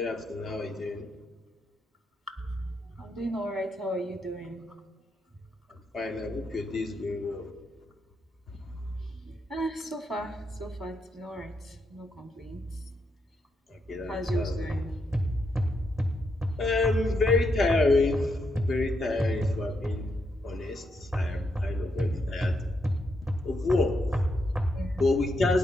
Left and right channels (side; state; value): both; normal; correlation 0.80